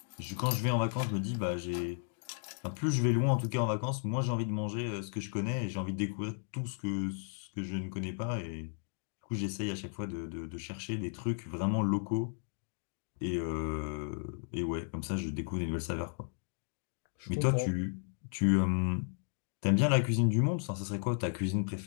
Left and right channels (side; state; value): right; silent; digital silence